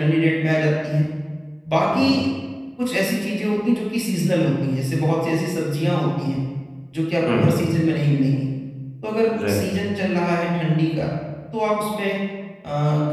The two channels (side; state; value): both; identical; correlation 1.00